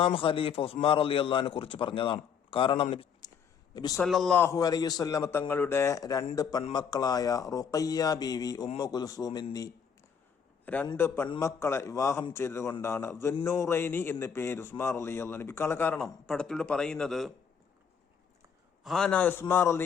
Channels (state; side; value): quieter; right; 7.0 dB